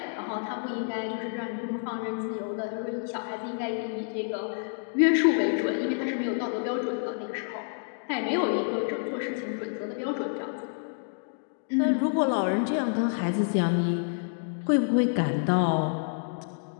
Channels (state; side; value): silent; right; digital silence